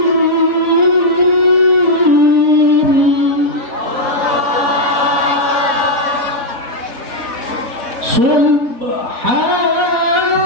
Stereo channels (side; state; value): left; late; 4.1 ms